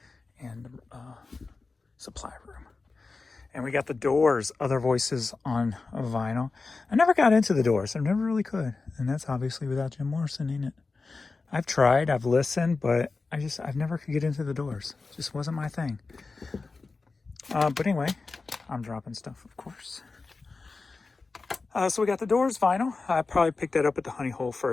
supply room. And we got the Doors, Other Voices on vinyl. I never got into the Doors. I never really could. And that's obviously without Jim Morrison in it. I've tried, I've listened, but I've never could get into the Doors. It just wasn't my thing. But anyway, I'm dropping stuff, of course. So we got the Doors vinyl. I probably picked that up at the Honey Hole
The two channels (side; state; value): right; quieter; 4.0 dB